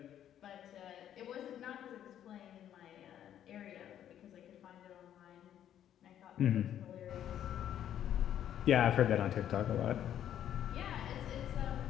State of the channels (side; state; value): right; quieter; 10.6 dB